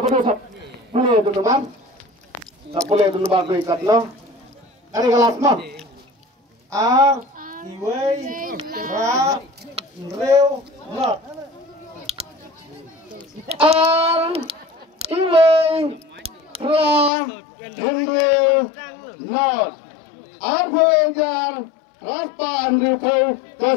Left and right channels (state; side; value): drops out; right; at 17.1 s